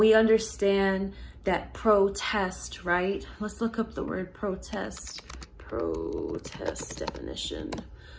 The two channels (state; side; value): identical; both; correlation 1.00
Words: understand that protest, right? Let's look up the word protest. Protest definition.